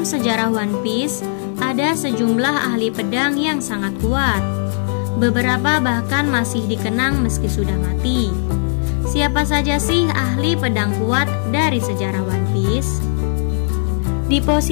sejarah One Piece, ada sejumlah ahli pedang yang sangat kuat. Beberapa bahkan masih dikenang meski sudah mati. Siapa saja sih ahli pedang kuat dari sejarah One Piece? Di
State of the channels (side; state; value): right; silent; 67 dB below the other